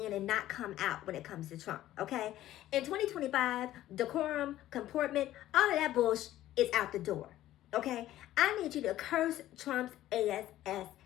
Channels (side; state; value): right; quieter; 13.9 dB